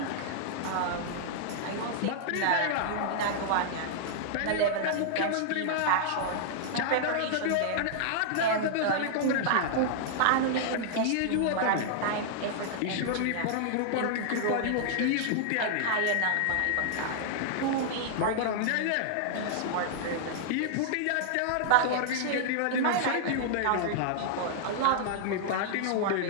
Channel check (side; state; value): both; different; correlation -0.01